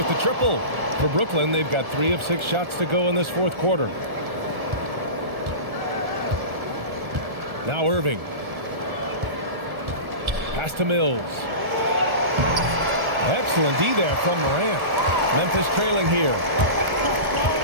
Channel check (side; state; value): left; late; 1.4 ms